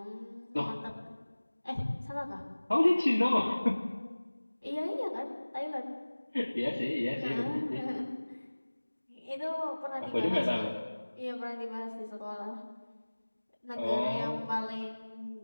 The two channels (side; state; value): both; inverted; correlation -1.00